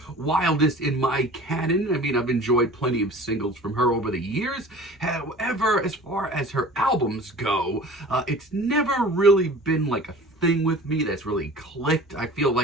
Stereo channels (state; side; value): normal; both; correlation 0.42